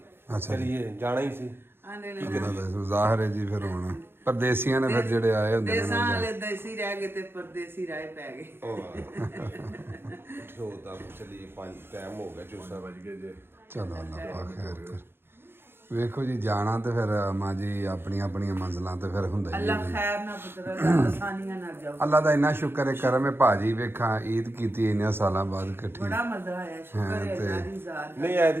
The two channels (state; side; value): late; left; 0.11 ms